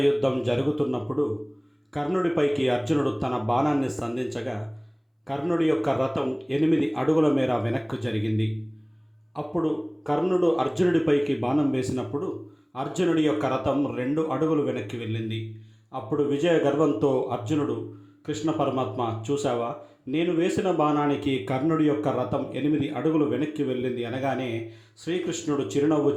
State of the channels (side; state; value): both; identical; correlation 1.00